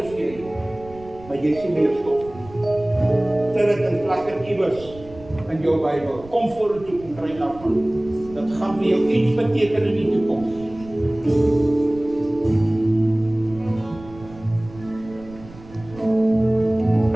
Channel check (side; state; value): right; noise; rumble, 19 dB below the sound